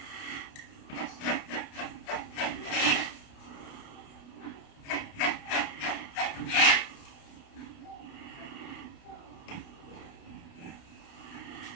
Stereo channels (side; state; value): right; late; 28 ms